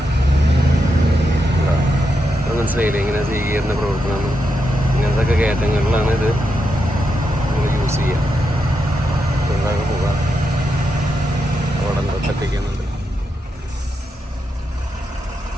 അത് മനസ്സിലായില്ലേ ഇങ്ങനെ സി ഗിയറിൻ്റെ പ്രവർത്തനം? ഇങ്ങനത്തെ ഒക്കെ കയറ്റങ്ങളിലാണ് ഇത് നമ്മൾ യൂസ് ചെയ്യുക. ചെറുതാകെ പോകാം. അവിടെ എന്താ തട്ടിക്കുന്നുണ്ട്.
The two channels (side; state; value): both; normal; correlation 0.85